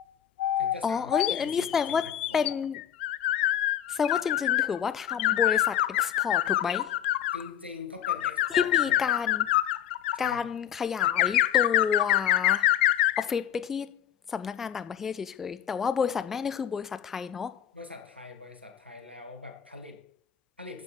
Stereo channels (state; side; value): quieter; right; 10.1 dB